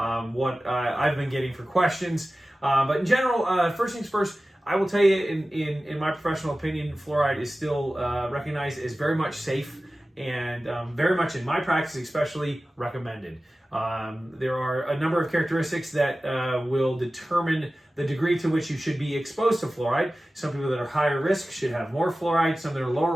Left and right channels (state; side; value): normal; both; correlation 0.96